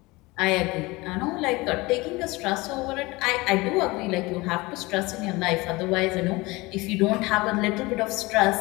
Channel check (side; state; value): right; quieter; 22.6 dB